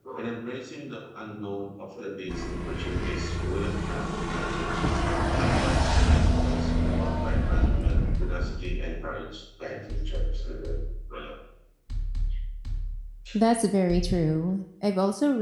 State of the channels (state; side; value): identical; both; correlation 1.00